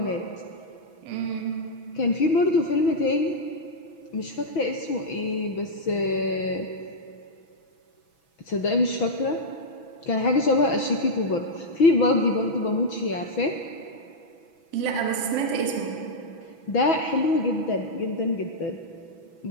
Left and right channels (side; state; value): right; late; 6.1 ms